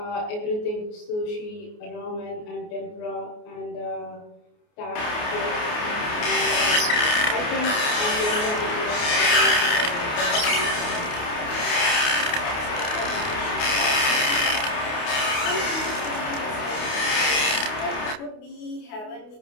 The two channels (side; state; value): right; late; 28 ms